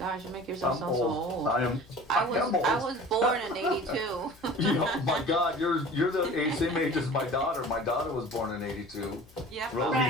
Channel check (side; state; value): left; noise; hum, 26 dB below the sound